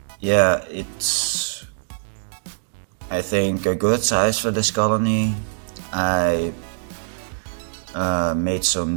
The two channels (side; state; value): left; silent; digital silence